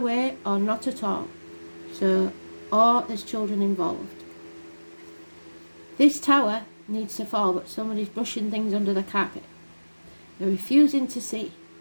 or not at all. So, or there's children involved. This tower needs to fall, but somebody's brushing things under the carpet. They're refusing to see.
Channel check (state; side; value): inverted; both; correlation -1.00